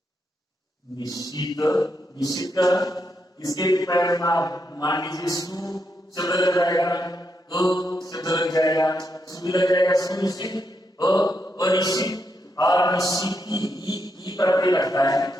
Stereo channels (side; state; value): both; normal; correlation 0.81